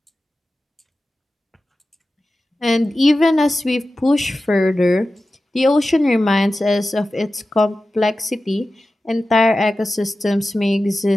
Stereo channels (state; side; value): normal; both; correlation 0.94